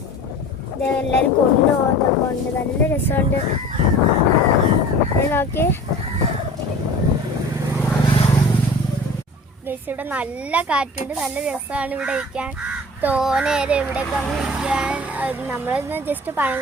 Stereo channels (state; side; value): normal; both; correlation 0.41